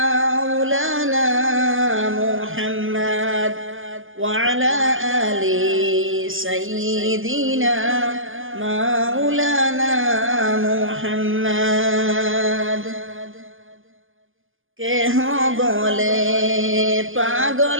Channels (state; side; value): late; left; 0.59 ms